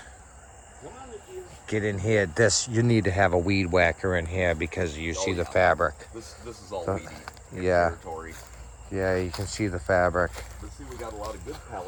Get in here. You need to have a weed whacker in here because you see the fabric. This is all weedy. Yeah. Territory. Yeah, you can see the fabric. But see, we got a lot of good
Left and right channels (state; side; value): identical; both; correlation 1.00